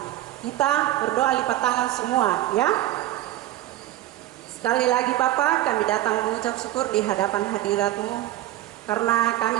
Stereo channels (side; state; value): left; quieter; 14.7 dB